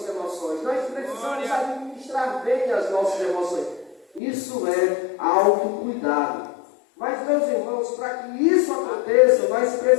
emoções, nós precisamos administrar bem as nossas emoções. Isso é autocuidado. Mas, meus irmãos, para que isso aconteça, nós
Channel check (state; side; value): drops out; right; at 4.2 s